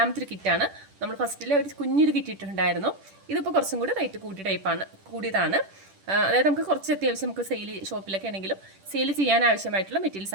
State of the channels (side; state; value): left; late; 10 ms